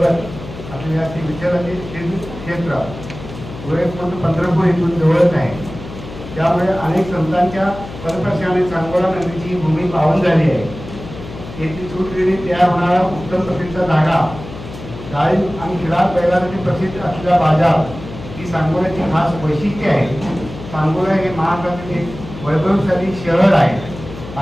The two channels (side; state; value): left; noise; hum, 13 dB below the sound